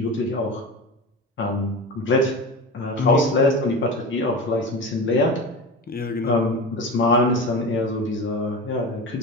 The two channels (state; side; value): normal; both; correlation 0.27